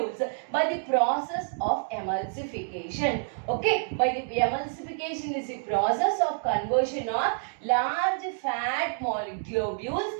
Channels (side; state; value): left; silent; digital silence